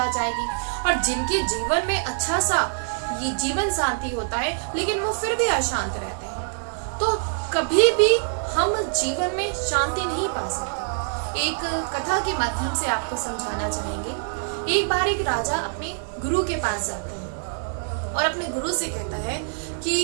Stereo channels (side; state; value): left; silent; digital silence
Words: जाएगी। और जिनके जीवन में अच्छा सा ये जीवन साथी होता है लेकिन वो फिर भी अशांत रहते हैं, तो कभी भी हम जीवन में शांति नहीं पा सकते। एक कथा के माध्यम से आपको समझाना चाहेंगे। एक बार एक राजा अपने गुरु के पास जाते हैं और अपने गुरु से कहता है